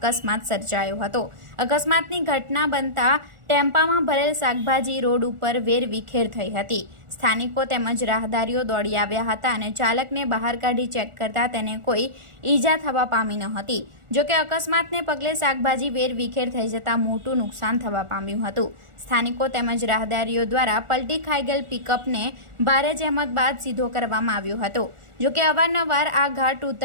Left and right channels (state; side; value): late; left; 1.4 ms